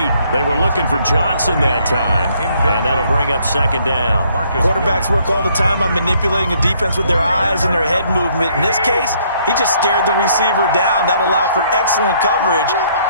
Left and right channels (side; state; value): both; inverted; correlation -0.66